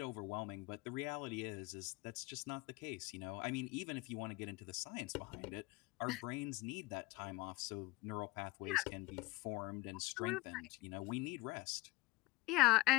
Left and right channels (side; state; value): right; quieter; 20.5 dB